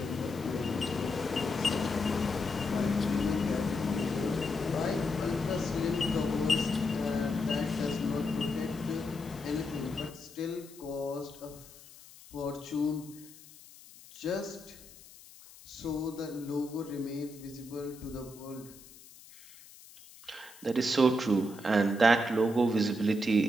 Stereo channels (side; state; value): left; noise; hiss, 20 dB below the sound